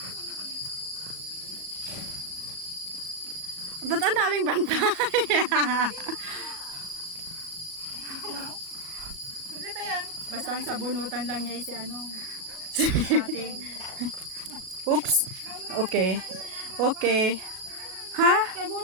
Ba't ang daming bantay? Sulit yan. Basta ang sabunutan lang niya si ano. Ate. Oops. Okay. Okay. Ha?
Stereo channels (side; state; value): left; late; 38 ms